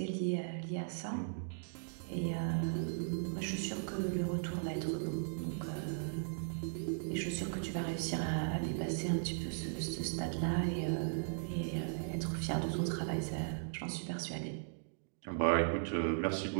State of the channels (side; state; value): left; silent; digital silence